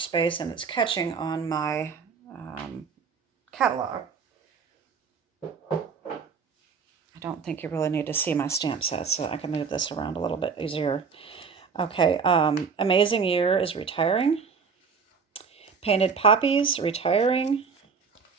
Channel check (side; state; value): left; quieter; 5.7 dB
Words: space, and it's catching on my catalog. I don't think you really need to see my stamp sets, so I can move this around a little bit easier. Okay, Amazing Year is retiring. Painted Poppies, retiring.